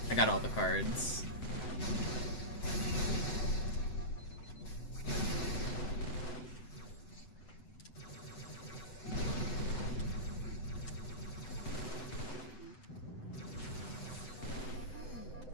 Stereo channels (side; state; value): right; late; 7.9 ms